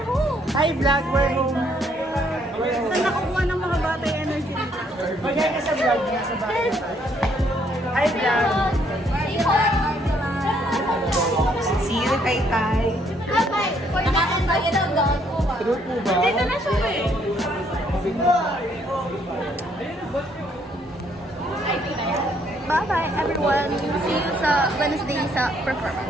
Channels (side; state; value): both; normal; correlation 0.68